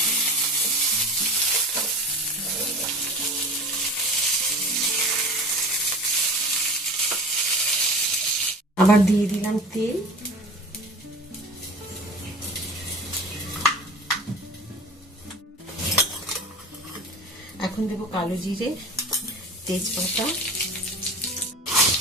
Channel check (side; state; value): both; normal; correlation 0.38